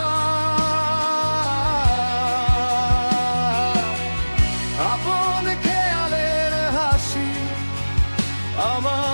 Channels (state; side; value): inverted; both; correlation -1.00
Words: আপন খেয়ালের হাসি